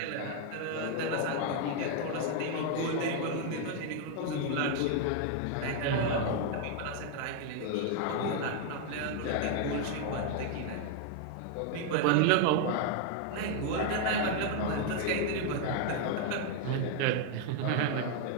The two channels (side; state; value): both; different; correlation 0.00